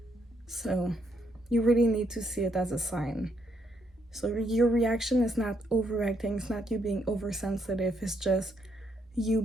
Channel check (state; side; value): normal; both; correlation 0.75